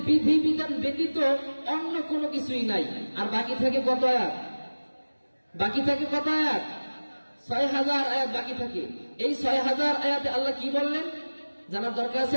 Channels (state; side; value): inverted; both; correlation -1.00